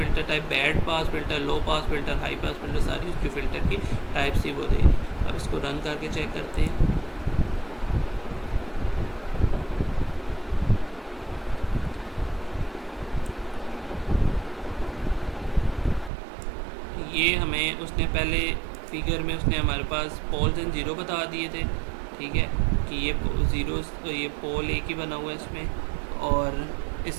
type band pass filter, low pass filter, high pass filter, सारी जो फ़िल्टर की टाइप्स थी वो दे दी। अब इसको रन करके चेक करते हैं। ये हमें उसने पहले फिगर में उसने हमारे पास पोल्स एंड ज़ीरो बता दिए थे, ठीक है, कि ये ज़ीरो, ये पोल एक ही बना हुआ है इसमें। और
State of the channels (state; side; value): drops out; left; at 16.1 s